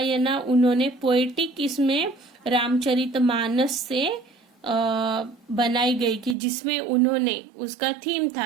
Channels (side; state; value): left; drops out; at 6.4 s